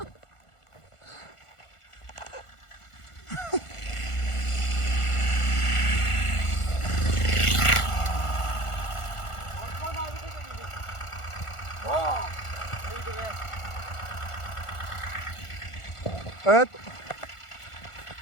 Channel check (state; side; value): late; right; 1.4 ms